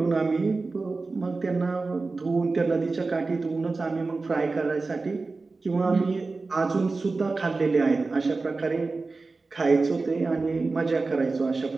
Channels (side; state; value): left; quieter; 3.8 dB